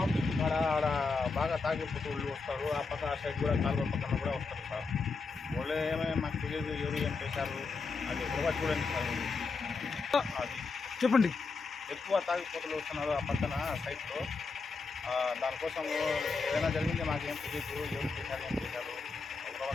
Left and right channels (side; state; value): right; quieter; 4.5 dB